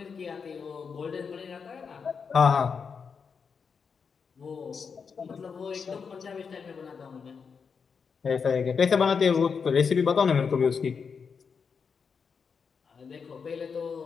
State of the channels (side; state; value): right; quieter; 5.9 dB